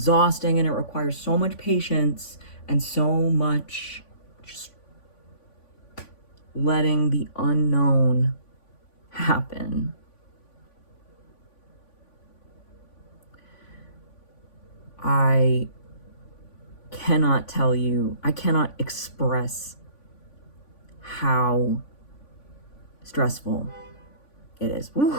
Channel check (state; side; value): late; right; 3.5 ms